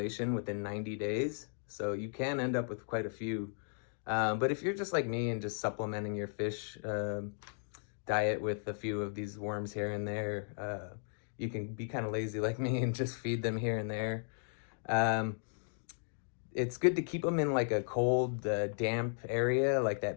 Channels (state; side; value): silent; right; 54 dB below the other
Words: within 90 days. So you can end up with quite a few. But if you're just like me and just supplementing your fish diet with a few of these worms here and there, you can be kind of lazy like me and just feed them here and there. It's good to keep them in like a cold, damp area, like